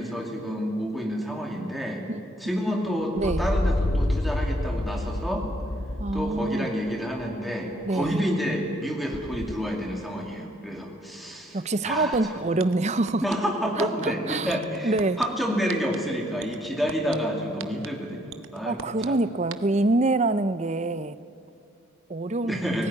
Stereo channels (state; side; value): normal; both; correlation 0.66